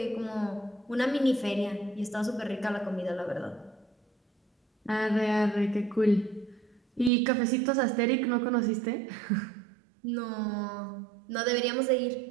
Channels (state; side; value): drops out; left; at 7.1 s